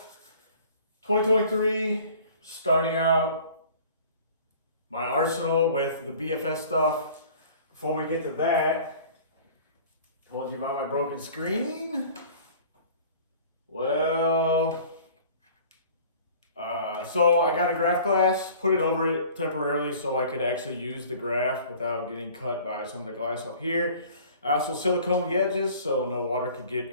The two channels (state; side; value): inverted; both; correlation -0.48